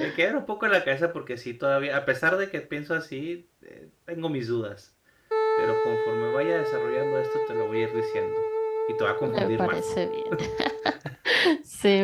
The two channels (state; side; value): identical; both; correlation 1.00